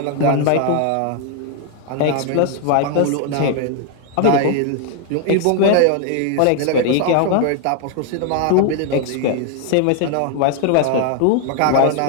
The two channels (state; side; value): different; both; correlation 0.00